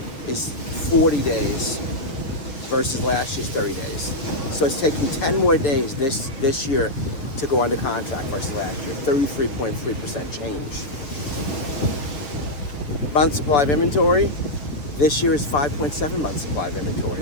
is 40 days versus last year's 30 days. So it's taking 10 more days this year to go under contract versus last year, 33.3% change. Month supply of inventory, this year is 5.7 months supply of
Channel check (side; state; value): right; late; 6.9 ms